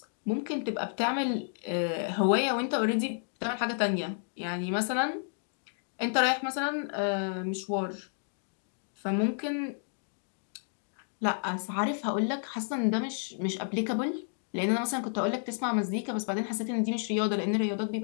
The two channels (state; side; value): silent; right; 57 dB below the other